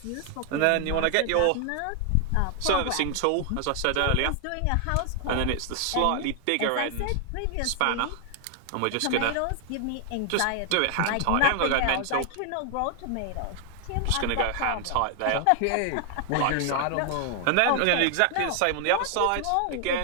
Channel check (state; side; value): different; both; correlation 0.00